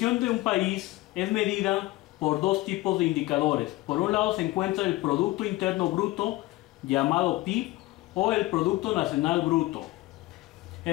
de un país es medida por dos tipos de indicadores. Por un lado se encuentra el Producto Interno Bruto, llamado PIB, o el Producto Nacional Bruto.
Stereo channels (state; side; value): quieter; right; 18.9 dB